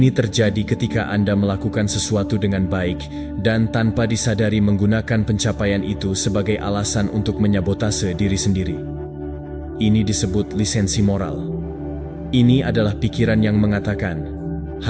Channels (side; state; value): both; identical; correlation 1.00